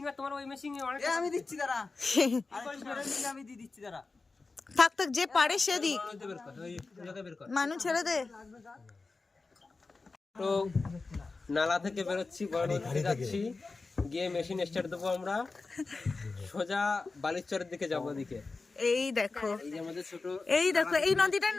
আর তোমার ওই মেশিং অনেক। আমি দিচ্ছি দাঁড়া। আমি দিয়ে দিচ্ছি দাঁড়া। থাক থাক, যে পারে সে দিক। মানু ছেড়ে দে। তো নালা থেকে বেরোচ্ছি, বড় নদীতে যাচ্ছি, গিয়ে মেশিন স্টার্ট দেবো আমরা, সোজা বালিচরের দিকে যাবো। ওদিকে এই দেখো, এই যে আমাদের ছোট, এই দেখো, এই নদীটার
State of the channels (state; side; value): quieter; right; 3.9 dB